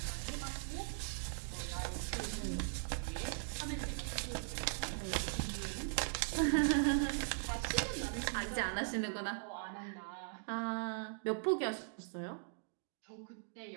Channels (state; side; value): silent; left; digital silence